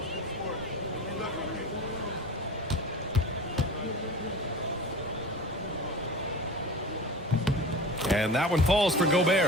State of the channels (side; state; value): both; normal; correlation 0.34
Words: And that one falls for